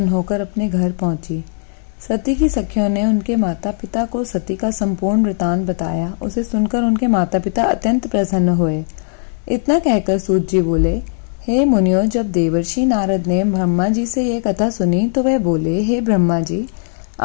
होकर अपने घर पहुंची। सती की सखियों ने उनके माता पिता को सती का संपूर्ण वृतांत बताया। उसे सुनकर उनके माता पिता अत्यंत प्रसन्न हुए। इतना कहकर सूत जी बोले, हे मुनियों, जब देवर्षि नारद ने ब्रह्मा जी से यह कथा सुनी तो वह बोले, हे ब्रह्मा जी,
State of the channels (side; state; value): right; silent; 67 dB below the other